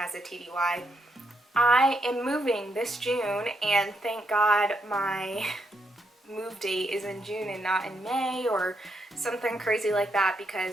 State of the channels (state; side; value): normal; both; correlation 0.79